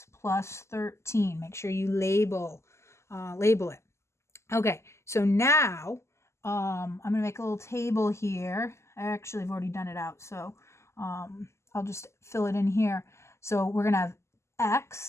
plus 13. Make sure you label it. Okay, so now I'm going to make a little table here. I actually have already done it out, so I'll just fill it in here. So we're going to have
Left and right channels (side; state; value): right; late; 0.13 ms